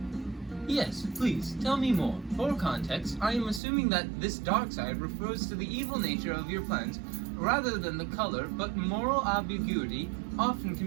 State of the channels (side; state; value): left; drops out; at 3.6 s